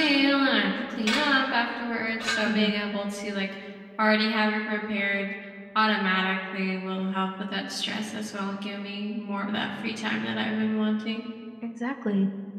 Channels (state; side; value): identical; both; correlation 1.00